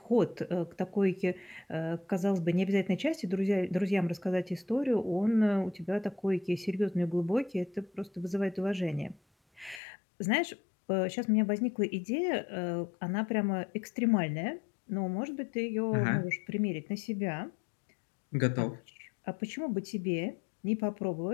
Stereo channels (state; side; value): drops out; right; at 9.8 s